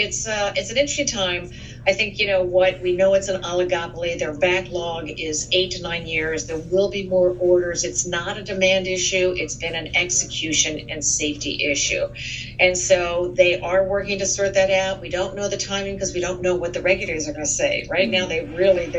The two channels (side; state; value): both; identical; correlation 1.00